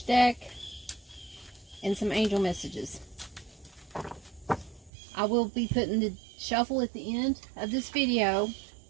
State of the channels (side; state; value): left; drops out; at 4.9 s